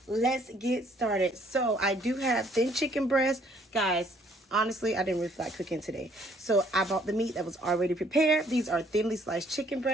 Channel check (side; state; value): both; normal; correlation 0.63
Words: Let's get started. So, I do have thin chicken breast. Guys, honestly, I didn't really feel like cooking today. So I bought the meat that was already prepared. These are thinly sliced chicken